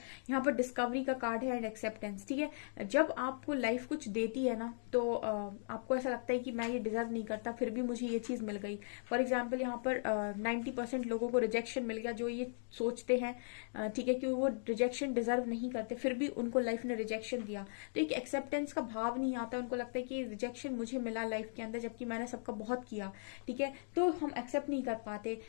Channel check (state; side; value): silent; right; digital silence